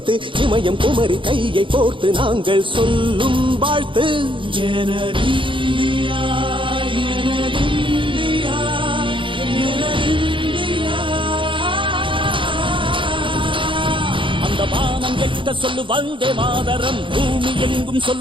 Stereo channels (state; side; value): late; left; 0.24 ms